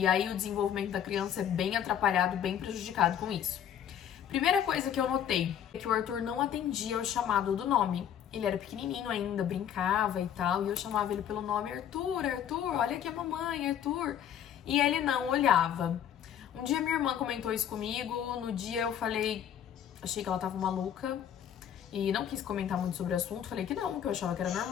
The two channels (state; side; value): quieter; right; 9.5 dB